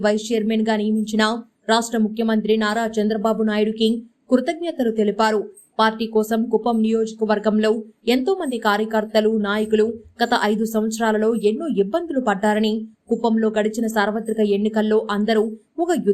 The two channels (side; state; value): both; identical; correlation 1.00